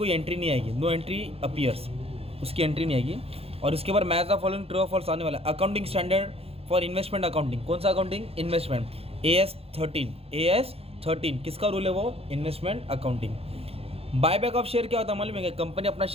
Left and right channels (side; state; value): left; late; 0.29 ms